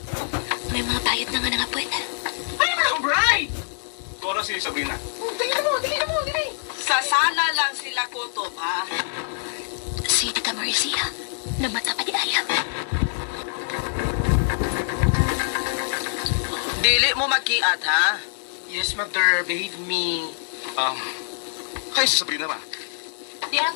May mga bayad na nga nangapwet. Ay, mga bride! Tora si Sabrina. Dali na mo. Sasana lang sila kutob, ha? Si Tita Marcy, namata pa di ayam. Dili mo magkiat, ha? Yes, mother. Believe me. Kayo si Sabrina ba? Di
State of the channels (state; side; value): silent; right; digital silence